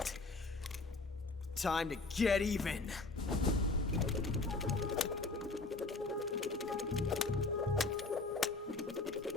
Time to get even.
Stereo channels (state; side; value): quieter; right; 3.6 dB